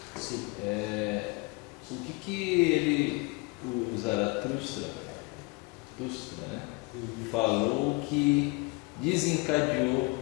Sim. O que o Zaratustra, né, falou que desencadeou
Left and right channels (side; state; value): right; quieter; 27.1 dB